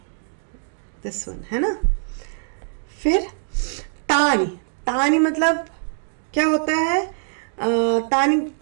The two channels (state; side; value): silent; left; digital silence